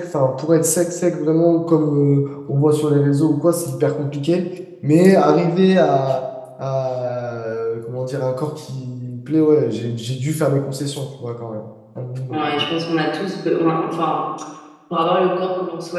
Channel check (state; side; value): identical; both; correlation 1.00